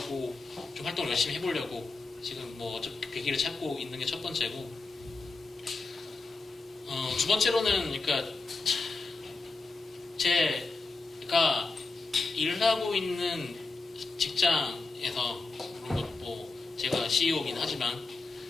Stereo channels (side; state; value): right; quieter; 3.7 dB